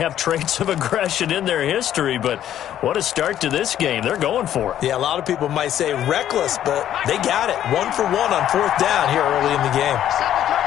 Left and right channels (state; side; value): quieter; right; 11.2 dB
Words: traits of aggression in their history, but what a start to this game. They're going for it. Yeah, a lot of people might say reckless, but they got it. 1 for 1 on 4th down here early in the game.